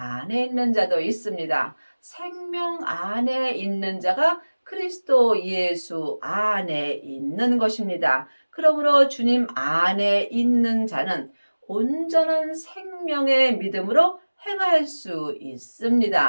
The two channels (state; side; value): inverted; both; correlation -1.00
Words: 있는 자도 있습니다. 생명 안에 있는 자가 그리스도 예수 안에 있는 것입니다. 그러므로 주님 안에 있는 자는 온전한 생명의 믿음으로 행할 수